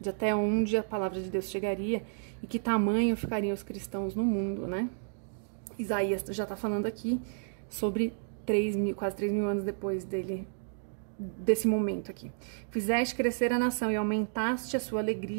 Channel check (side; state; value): left; silent; digital silence